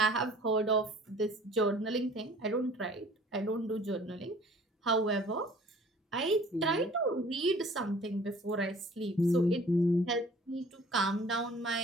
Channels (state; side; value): normal; both; correlation 0.51